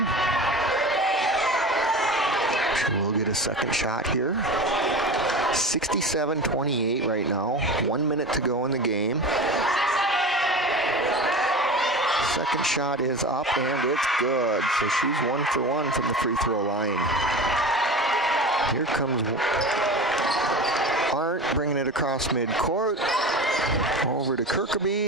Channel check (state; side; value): normal; both; correlation 0.31